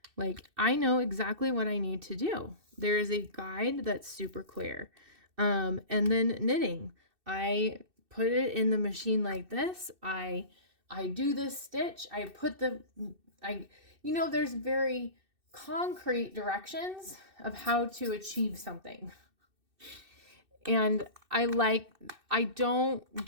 Like I know exactly what I need to do. There is a guide that's super clear. And then knitting, I put it in the machine like this. I do this stitch. I put there's very concrete directions of how to achieve something. And I don't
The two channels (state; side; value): late; left; 2.6 ms